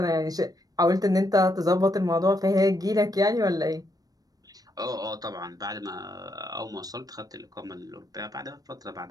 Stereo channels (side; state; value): left; late; 0.18 ms